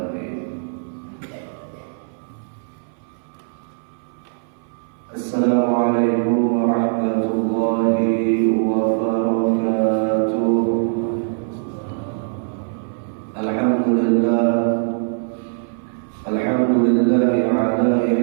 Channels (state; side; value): silent; left; 60 dB below the other